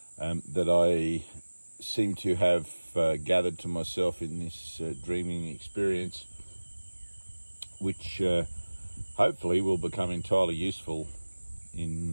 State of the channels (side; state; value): both; inverted; correlation -1.00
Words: that I seem to have gathered to myself in this dreaming experience, which hopefully will become entirely useful